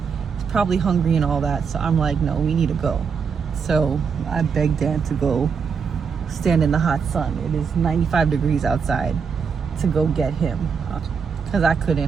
He's probably hungry and all that, so I'm like, no, we need to go. So I begged Dan to go stand in the hot sun. It is 95 degrees outside, to go get him, because I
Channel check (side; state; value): left; quieter; 6.1 dB